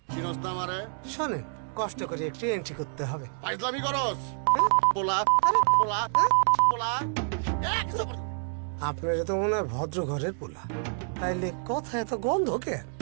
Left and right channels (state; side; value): silent; left; digital silence